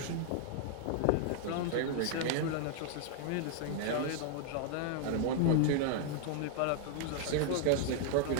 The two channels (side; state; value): both; different; correlation -0.01